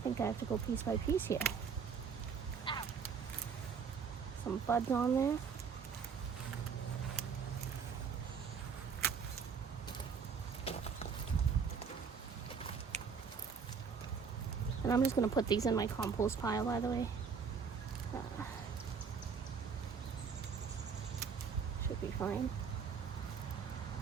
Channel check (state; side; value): quieter; left; 6.1 dB